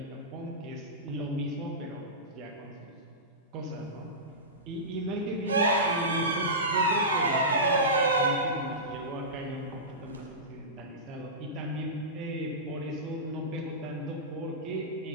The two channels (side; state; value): both; normal; correlation -0.19